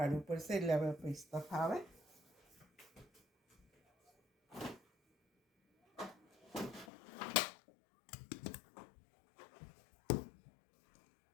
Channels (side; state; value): right; drops out; at 6.9 s